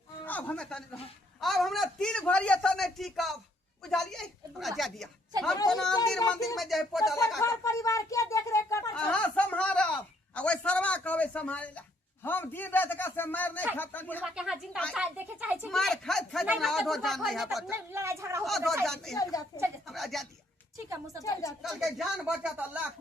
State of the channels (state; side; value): normal; both; correlation 0.68